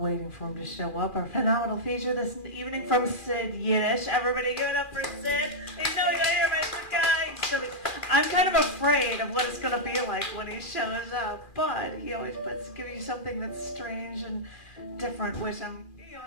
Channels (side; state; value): right; late; 2.4 ms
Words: for him to show up, our phenomenal feature this evening from Sid Yiddish. Everybody give it up for Sid. You know you gotta hear my good guy. I'm kind of afraid of what it's going to be like when he shows up, but he always gives you something that's strange and different, which I'm,